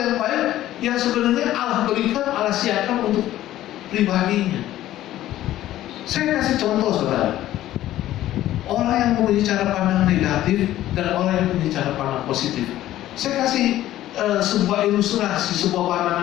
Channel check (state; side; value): quieter; right; 13.9 dB